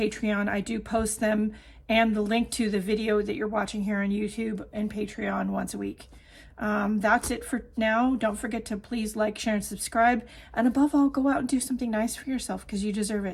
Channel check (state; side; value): identical; both; correlation 1.00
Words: I do post them and the link to the video that you're watching here on YouTube and Patreon once a week. That's it for now. Don't forget to please like, share, and subscribe. And above all, go out and do something nice for yourself because you deserve